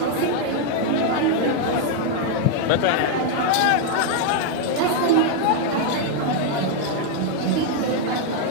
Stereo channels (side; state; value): both; different; correlation 0.00